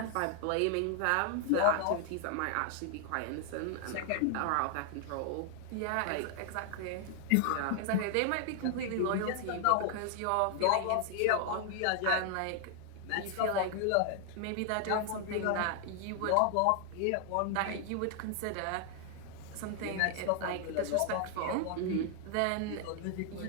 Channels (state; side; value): different; both; correlation 0.00